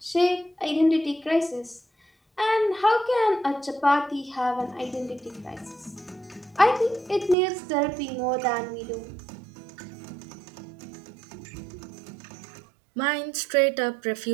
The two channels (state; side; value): drops out; left; at 7.4 s